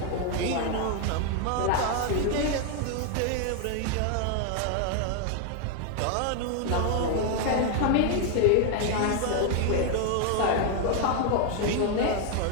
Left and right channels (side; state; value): both; different; correlation 0.00